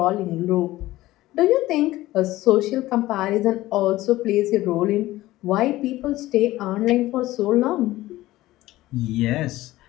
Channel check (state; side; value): quieter; right; 16.8 dB